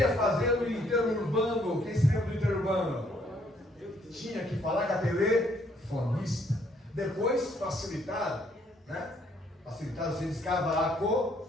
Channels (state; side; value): normal; both; correlation 0.67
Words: fazer o interurbano. Quem se lembra do interurbano? Tinha que falar com a telefonista. Depois facilitaram, né? Facilitaram, você descava a